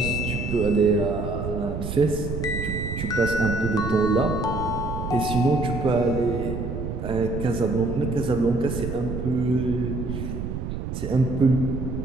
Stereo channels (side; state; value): right; noise; rumble, 5 dB below the sound